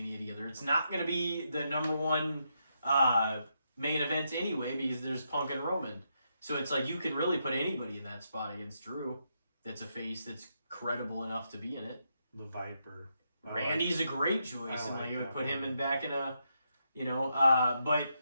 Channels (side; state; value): both; inverted; correlation -0.81